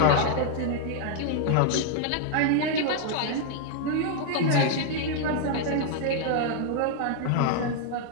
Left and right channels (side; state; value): both; different; correlation 0.00